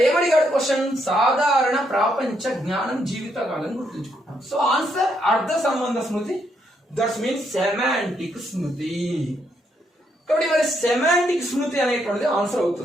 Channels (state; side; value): normal; both; correlation 0.76